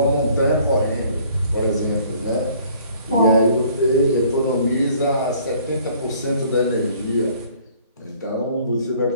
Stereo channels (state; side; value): inverted; both; correlation -0.57